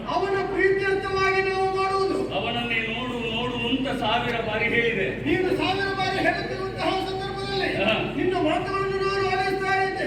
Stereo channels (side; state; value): both; identical; correlation 1.00